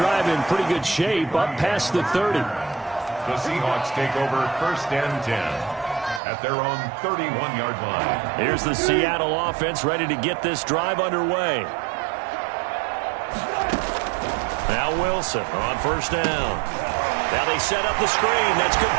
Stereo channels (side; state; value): left; drops out; at 6.2 s